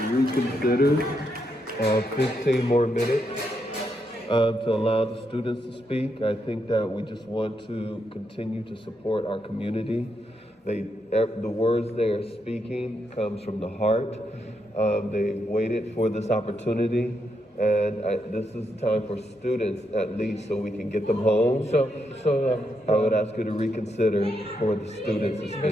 reconsider 15 more minutes to allow the students to speak. I think that we just want to continue to support our community. The words they are speaking comes from the heart. They waited for this opportunity, and this is the time for students at least, so we can get them home. So I would ask you to reconsider for the students to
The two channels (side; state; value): both; normal; correlation 0.81